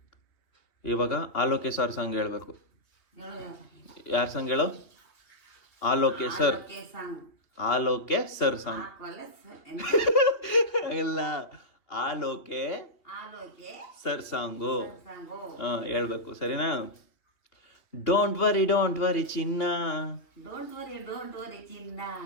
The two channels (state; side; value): late; right; 3.0 ms